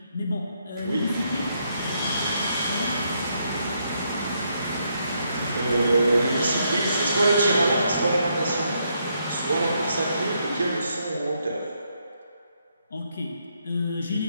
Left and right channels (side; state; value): both; inverted; correlation -0.76